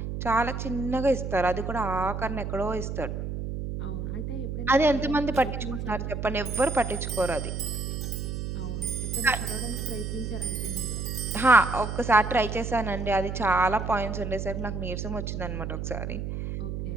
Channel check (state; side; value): noise; right; hum, 4 dB below the sound